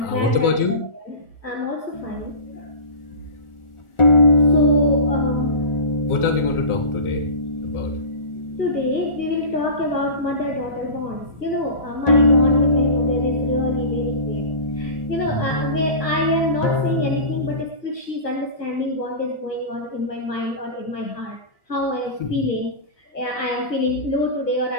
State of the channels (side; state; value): right; late; 1.4 ms